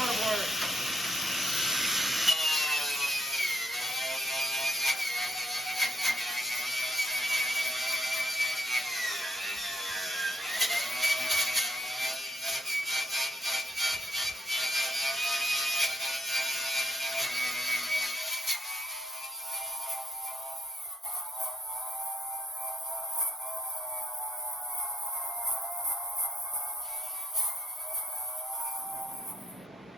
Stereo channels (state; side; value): normal; both; correlation 0.69